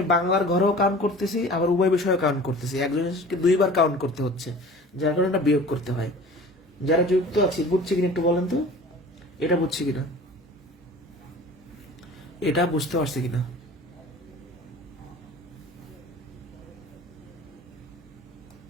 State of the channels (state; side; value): normal; both; correlation 0.42